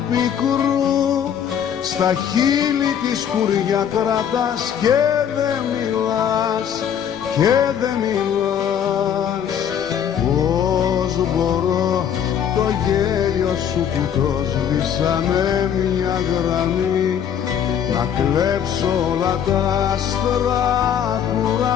πικρού, στα χείλη τη σκουριά κρατάς και δεν μιλάς, και δεν μιλάς. Πώς μπορώ το γέλιο σου που το σβήσανε μια γραμμή, να κλέψω όλα τα άστρα του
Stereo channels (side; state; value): right; quieter; 8.8 dB